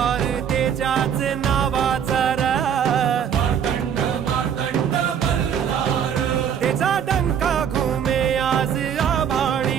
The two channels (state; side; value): quieter; left; 8.3 dB